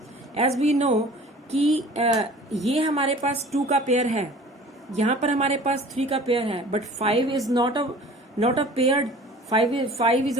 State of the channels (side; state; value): both; normal; correlation 0.45